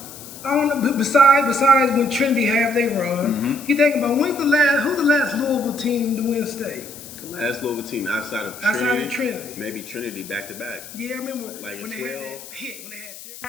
I don't know. Besides when Trinity have they run, you think about who's the last Louisville team to win state? The last Louisville team outside of Trinity. Maybe Trinity back to back. Yeah, I remember like when a they 12. had that hit when they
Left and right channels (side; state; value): left; noise; hiss, 15 dB below the sound